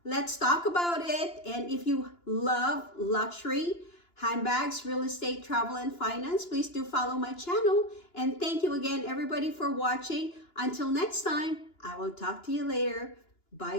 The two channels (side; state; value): right; late; 2.9 ms